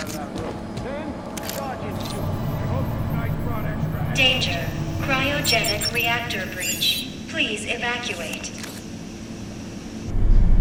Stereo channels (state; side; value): identical; both; correlation 1.00